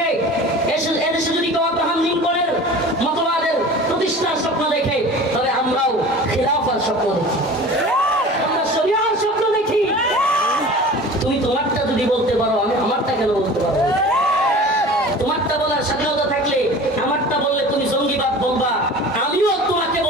এদেশে যদি কেউ আব্রাহাম লিঙ্কনের মতবাদের প্রতিষ্ঠার স্বপ্ন দেখে, তবে আমরাও খিলাফার স্বপ্ন দেখি, আমরা শরিয়ার স্বপ্ন দেখি। তুমি তোমারটা যদি বলতে পারো, আমি আমারটা কেন বলতে পারবো? তোমারটা বলার স্বাধীনতা থাকলে আমারটা বললে তুমি জঙ্গিবাদ বলবা, আমিও তোমাকে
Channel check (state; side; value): normal; both; correlation 0.39